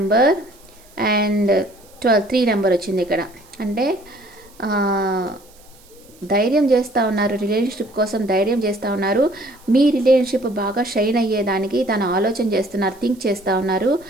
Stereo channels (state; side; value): noise; right; hiss, 27 dB below the sound